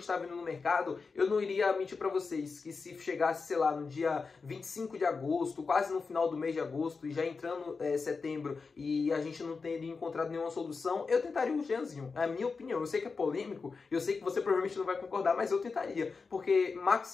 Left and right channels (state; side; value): quieter; right; 4.7 dB